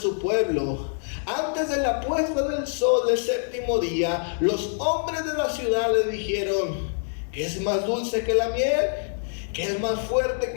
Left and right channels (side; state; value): right; silent; digital silence